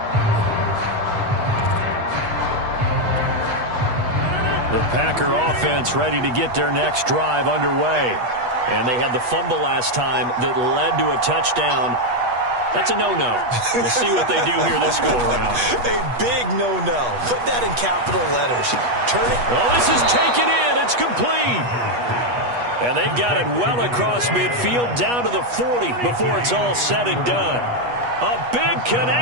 The Packer offense ready to get their next drive underway. And they had the fumble last time that led to a touchdown. That's a no-no. We'll see what they do here this go-around. A big no-no. Put that in capital letters. Turn it. Oh, this is taken in. It's complete. And they've got it well across midfield down to the 40 before it's all said and done. A big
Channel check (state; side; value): late; left; 8.3 ms